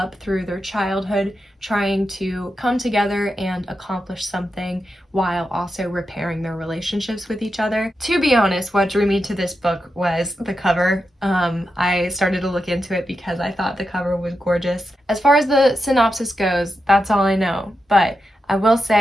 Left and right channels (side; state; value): both; normal; correlation 0.88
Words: through their childhood, trying to come together and accomplish something while also repairing their relationships with each other. To be honest, what drew me to this book was the cover. I started to look into it because I thought the cover was gorgeous. As far as the synopsis goes, that's all I know, but I will